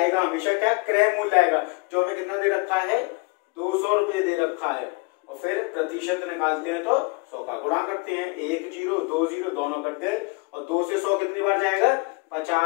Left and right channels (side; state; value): right; quieter; 28.4 dB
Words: हमेशा क्या, क्रय मूल्य आएगा जो हमें कितना दे रखा है, 200 रुपए दे रखा है। और फिर प्रतिशत निकालते हैं तो 100 का गुणा करते हैं, 1 0 2 0 दोनों करते हैं और 2 से 100 कितनी बार जाएगा,